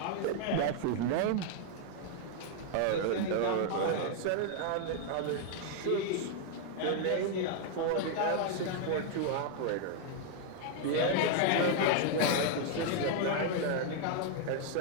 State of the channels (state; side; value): different; both; correlation 0.00